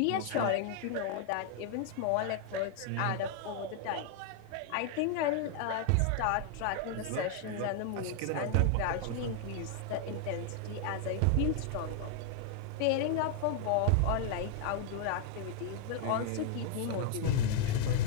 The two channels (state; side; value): different; both; correlation 0.00